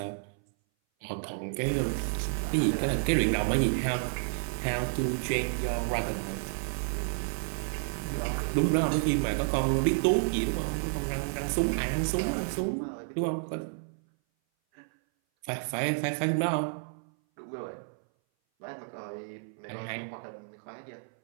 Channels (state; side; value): silent; left; 57 dB below the other